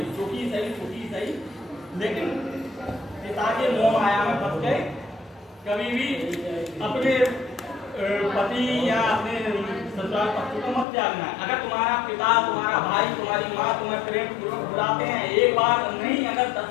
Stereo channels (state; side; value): drops out; right; at 10.9 s